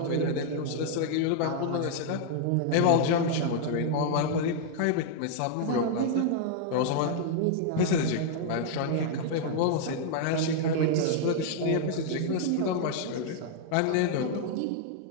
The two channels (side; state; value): both; different; correlation 0.00